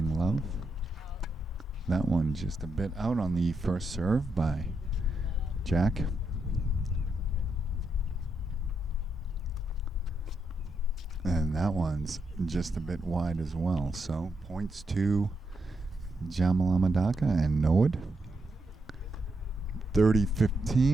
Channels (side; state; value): both; normal; correlation 0.82